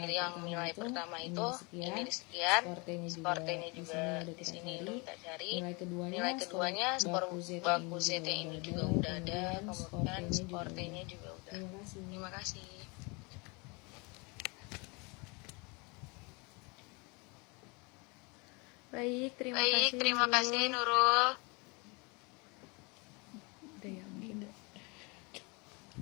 yang nilai pertama itu ini sekian. Skor T-nya juga di sini udah kita cari. Nilai keduanya skor baku Z-nya ini juga udah ada. Kemudian skor T-nya juga udah. Terima kasih. Baik, terima kasih Nurul. Udah ya, mungkin udah.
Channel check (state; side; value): quieter; right; 29.2 dB